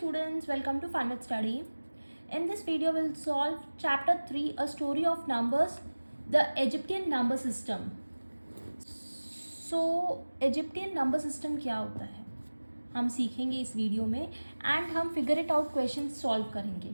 welcome to Fun with Study. In this video we'll solve chapter 3, a story of numbers, the Egyptian number system. So Egyptian number system क्या होता है हम सीखेंगे इस video में and हम figure it out questions solve करेंगे.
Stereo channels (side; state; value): both; inverted; correlation -1.00